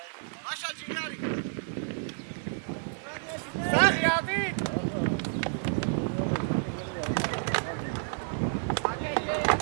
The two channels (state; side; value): silent; left; digital silence